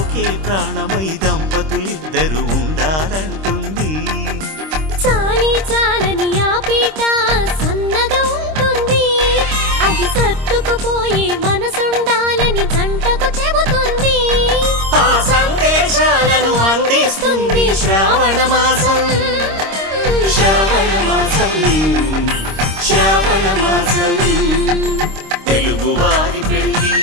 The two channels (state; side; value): late; left; 26 ms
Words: ప్రాణమై దంపతులిద్దరు ఉండాలంటుంది. చాలి చాలని ఆ పీట సన్నగా ఉంటుంది, అది సర్దుకుపోయే మనసుండాలని జంటకు చెబుతుంది. ఆ సందేశాలను అందిస్తుంది శ్రావణ మాసం, శ్రావణ మాసం, శ్రావణ మాసం. తెలుగువారి పెళ్ళి